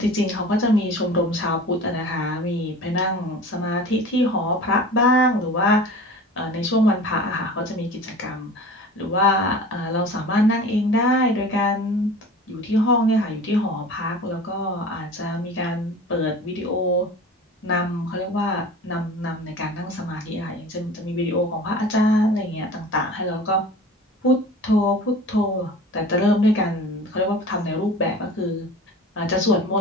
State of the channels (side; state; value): both; normal; correlation 0.39